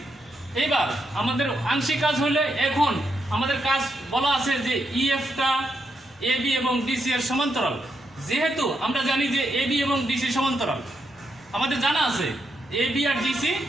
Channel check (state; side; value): normal; both; correlation 0.81